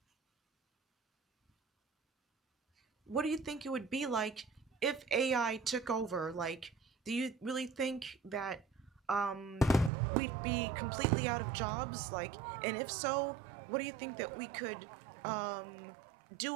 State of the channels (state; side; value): drops out; left; at 9.9 s